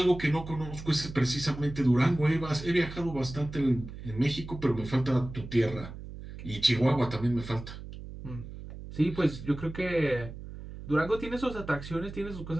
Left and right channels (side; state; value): right; noise; hum, 12 dB below the sound